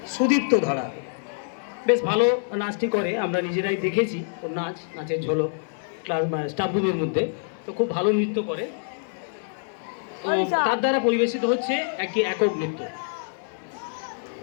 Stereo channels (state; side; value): silent; right; digital silence